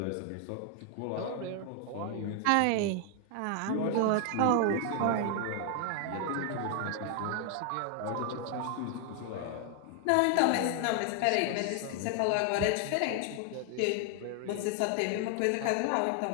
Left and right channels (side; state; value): both; different; correlation 0.00